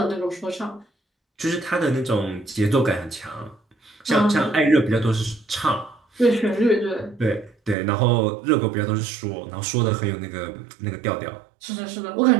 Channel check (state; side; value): drops out; left; at 7.8 s